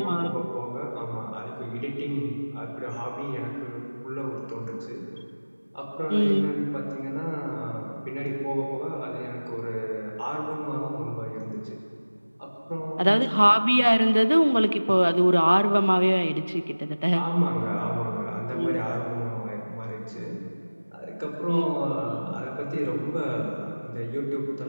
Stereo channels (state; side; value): inverted; both; correlation -1.00